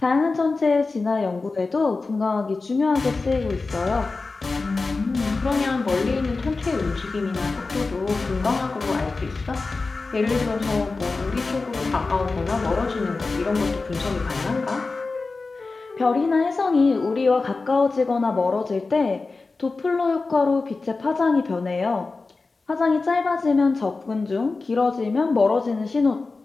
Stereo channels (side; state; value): right; quieter; 3.8 dB